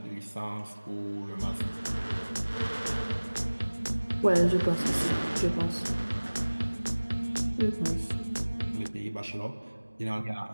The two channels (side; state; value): both; inverted; correlation -1.00